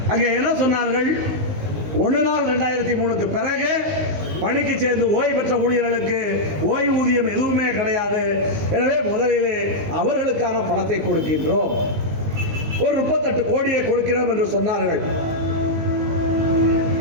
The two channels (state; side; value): late; left; 19 ms